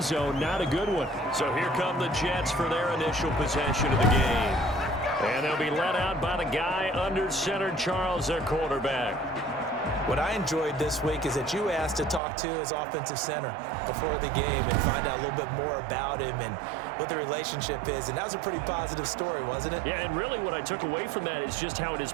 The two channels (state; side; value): drops out; left; at 12.2 s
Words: zone, not a good one. So here come the Jets for their initial possession of the game. And they'll be led out by the guy under center, Charles, their quarterback. What I enjoyed this week is that you asked to talk to his offensive center before the game and find out a little bit more about him and what the relationship is. And that was a pretty positive story, wasn't it? Yeah, and really what I took away from that is just how it is